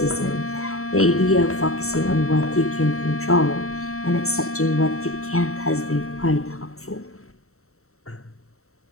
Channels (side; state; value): right; late; 0.63 ms